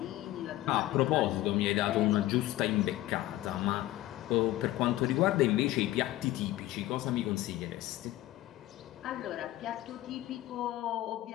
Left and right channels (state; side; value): quieter; right; 15.8 dB